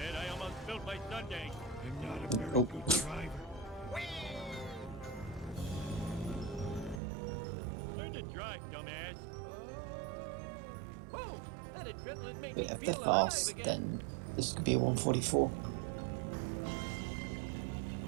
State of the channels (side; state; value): left; drops out; at 7.0 s